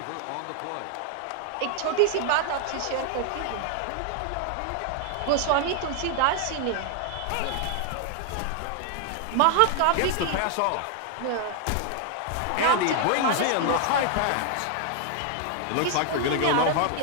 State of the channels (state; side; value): different; both; correlation 0.00